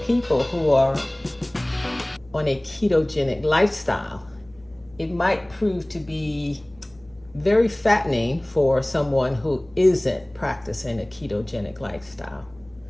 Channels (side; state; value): left; noise; hum, 29 dB below the sound